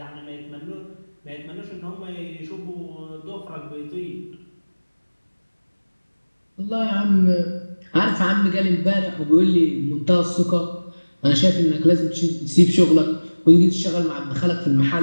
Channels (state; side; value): inverted; both; correlation -1.00